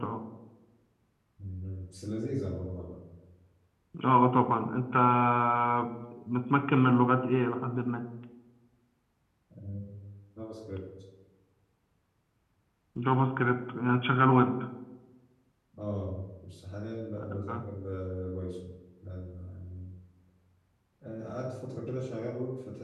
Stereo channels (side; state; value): both; identical; correlation 1.00